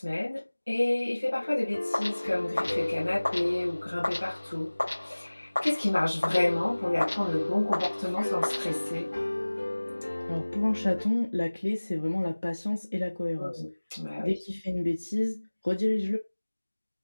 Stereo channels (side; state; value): both; inverted; correlation -1.00